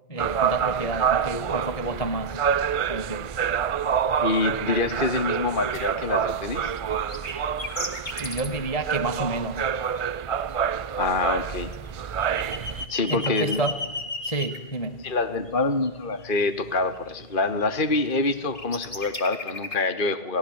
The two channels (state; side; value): late; right; 2.2 ms